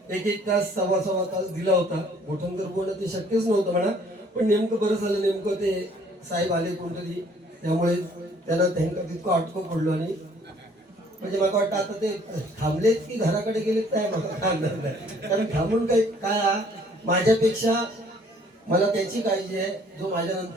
एक तास सव्वा तास दिला होता. गोठणकर बोलणं ते शक्यच नव्हतं म्हणा, पण नेमकं बरं झालं, नेमकं ते साहेब आले कोणतरी, त्यामुळे त्यांना त्यांना तितकं अटकं पडलो. आणि म्हणजे मला वाटतं आता ते थांबलेत की घराकडे गेलेत काय मला थांबणार नाही, कारण थांबून काय माझ्यापेक्षा मला त्याची काळजी आहे जो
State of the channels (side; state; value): both; normal; correlation 0.59